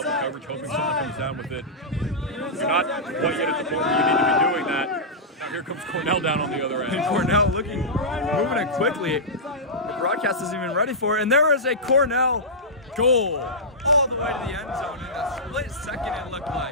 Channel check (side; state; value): both; normal; correlation -0.12